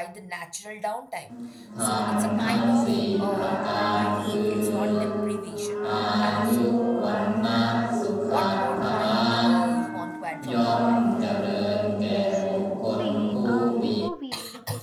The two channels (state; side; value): identical; both; correlation 1.00